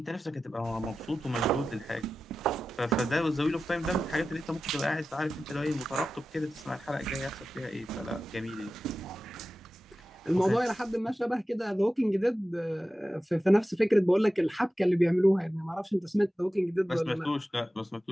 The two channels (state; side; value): normal; both; correlation 0.93